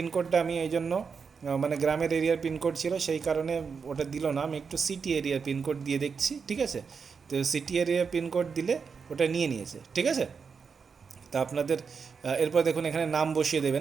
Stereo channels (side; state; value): left; quieter; 5.7 dB